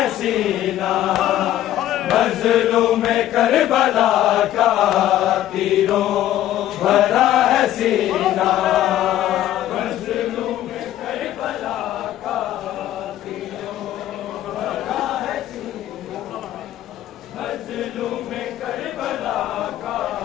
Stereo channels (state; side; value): quieter; right; 12.9 dB